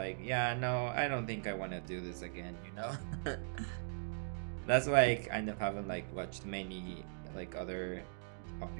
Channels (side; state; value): left; silent; digital silence